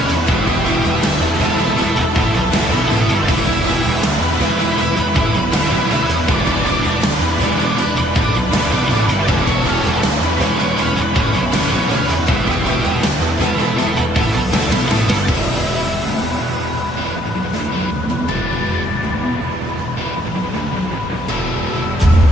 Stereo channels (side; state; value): both; normal; correlation 0.66